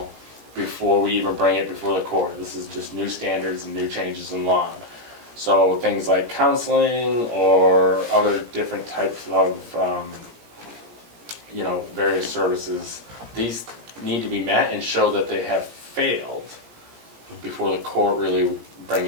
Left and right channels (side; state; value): left; late; 17 ms